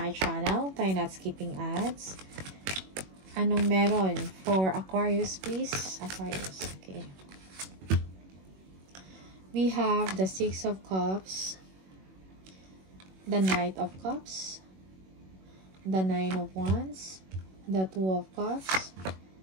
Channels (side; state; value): left; late; 21 ms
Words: channel. Try not skipping ads. Anong meron for Aquarius, please? Aquarius, okay. We have the Six of Cups, the Knight of Cups, the Nine of Wands, the Two of Cups,